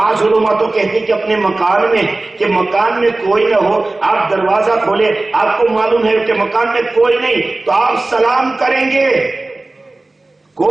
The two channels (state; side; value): quieter; left; 3.0 dB